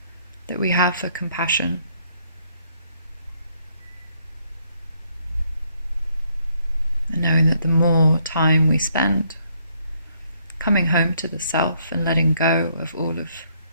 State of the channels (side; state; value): both; inverted; correlation -0.69